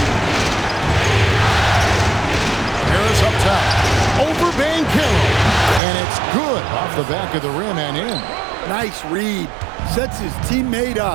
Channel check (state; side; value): drops out; left; at 5.8 s